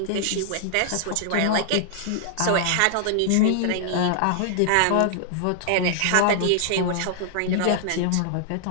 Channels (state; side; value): different; both; correlation -0.01